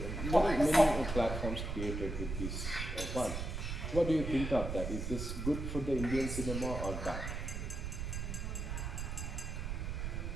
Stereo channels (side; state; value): right; noise; rumble, 4 dB below the sound